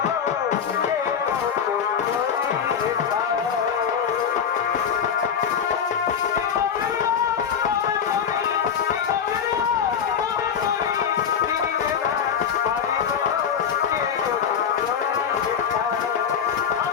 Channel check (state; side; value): quieter; right; 7.5 dB